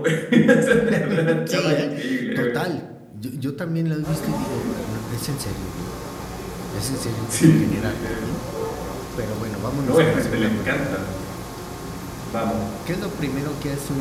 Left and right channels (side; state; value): both; identical; correlation 1.00